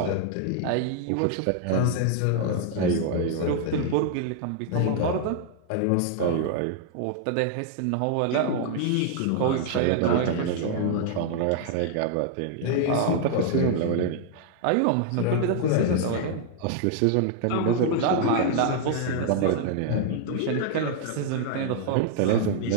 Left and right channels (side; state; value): both; different; correlation -0.01